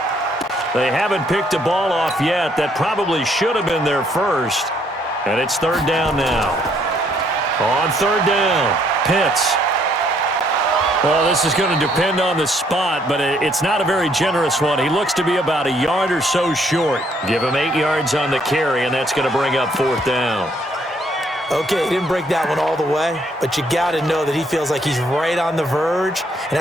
They haven't picked the ball off yet. That probably should have been their first. And it's third down now. On third down, Pitts. Well, this is going to depend on the spot, but it's not a very generous one. He looks to be about a yard or so short. Give him 8 yards on the carry, and that's going to bring up fourth down. Okay, he didn't break that one all the way, but you got to know that he feels like he's right on the verge, and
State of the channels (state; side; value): normal; both; correlation 0.68